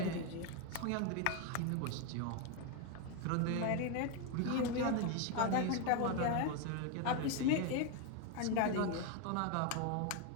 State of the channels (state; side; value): different; both; correlation 0.01